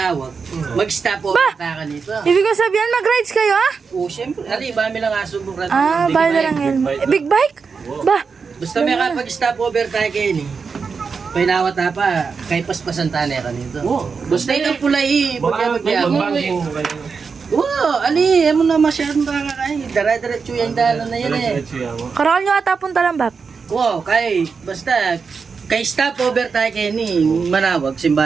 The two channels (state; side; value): quieter; left; 5.3 dB